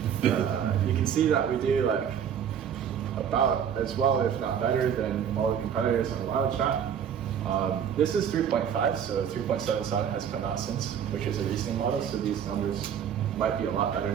you can see that we do like about as well, if not better, than all the competitors on WildChat. This is 3.5, so 3.77 has come out since, which is a reasoning model, so these numbers might be a lot better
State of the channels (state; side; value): quieter; left; 8.4 dB